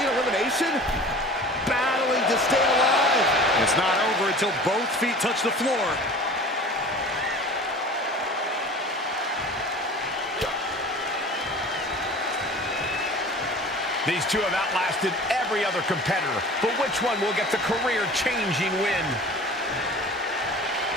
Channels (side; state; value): both; normal; correlation 0.41